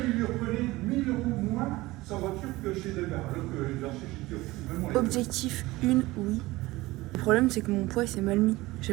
il lui reprenait 1000 € moins sa voiture que chez Delgar, alors que j'ai acheté chez Kyo. Objectif 1, oui. problème, c'est que mon poids s'est mal mis. J'ai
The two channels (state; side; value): quieter; left; 19.7 dB